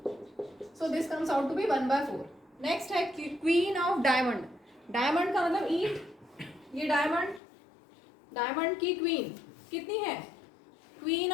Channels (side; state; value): right; drops out; at 7.4 s